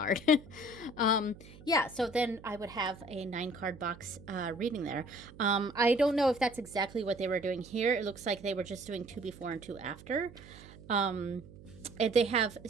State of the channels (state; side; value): noise; right; hum, 19 dB below the sound